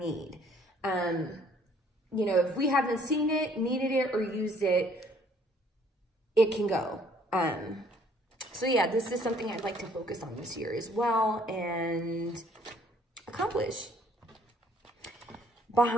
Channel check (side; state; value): both; normal; correlation 0.61